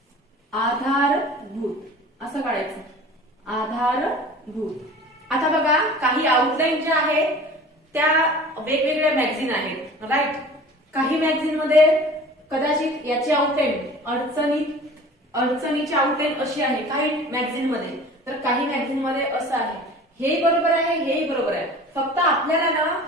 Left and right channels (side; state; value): both; normal; correlation 0.42